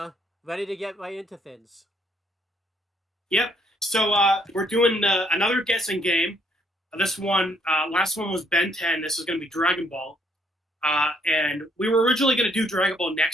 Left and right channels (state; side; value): normal; both; correlation 0.68